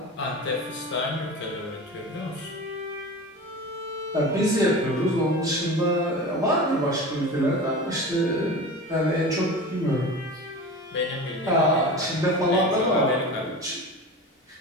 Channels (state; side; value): normal; both; correlation 0.32